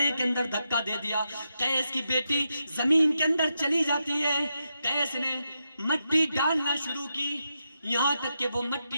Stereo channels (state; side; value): inverted; both; correlation -0.85